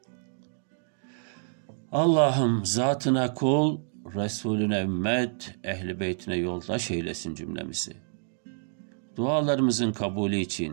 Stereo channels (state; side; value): silent; left; 59 dB below the other